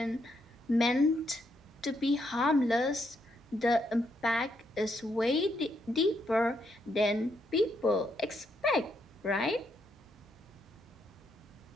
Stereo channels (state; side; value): normal; both; correlation 0.77